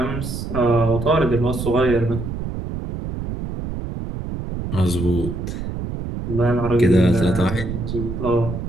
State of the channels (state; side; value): noise; right; rumble, 6 dB below the sound